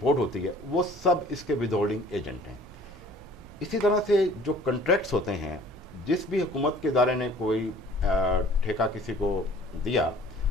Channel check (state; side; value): normal; both; correlation 0.51